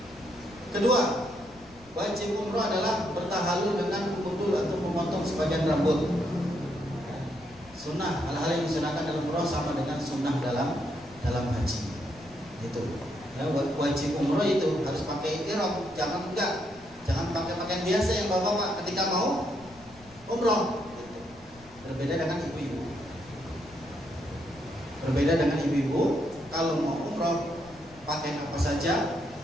Kedua, wajib umroh adalah bertahalul dengan kudul atau memotong sebagian rambut. Sunnah, hal-hal yang disunahkan dalam umroh sama dengan sunnah dalam haji. Itu. Ya, wajib umroh itu harus pakai ihram, jangan pakai pakaian biasa yang bapak ketika mau umroh. Berbeda dengan ibu-ibu. Kalau mau umroh pakai apa saja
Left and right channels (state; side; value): noise; left; rumble, 24 dB below the sound